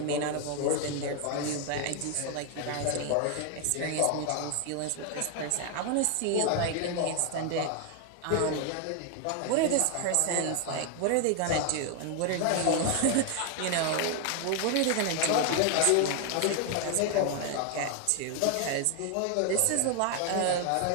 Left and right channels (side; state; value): both; different; correlation 0.00